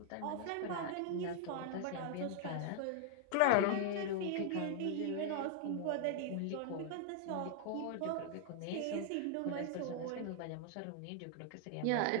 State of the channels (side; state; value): both; different; correlation -0.01